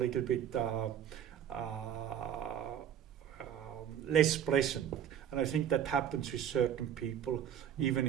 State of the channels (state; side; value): quieter; left; 9.6 dB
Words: bit less pleasant. And I think that happens with certain people, even